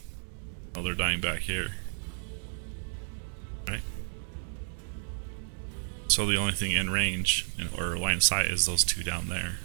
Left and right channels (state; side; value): silent; left; 57 dB below the other